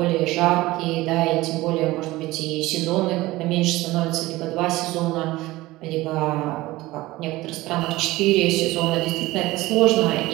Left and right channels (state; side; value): quieter; left; 18.7 dB